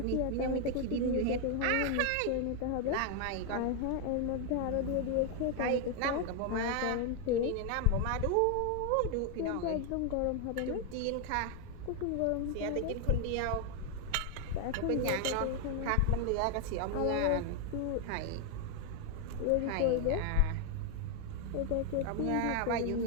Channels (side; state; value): both; different; correlation 0.00